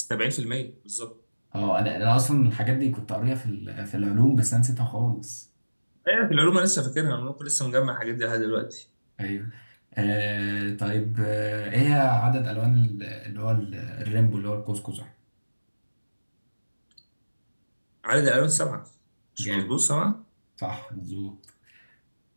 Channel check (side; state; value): both; inverted; correlation -1.00